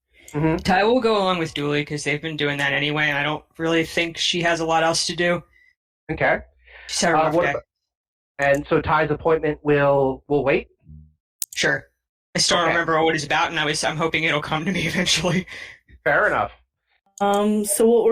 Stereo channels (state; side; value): identical; both; correlation 1.00